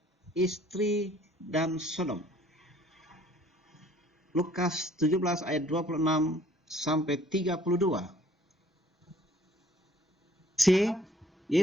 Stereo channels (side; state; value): both; normal; correlation 0.58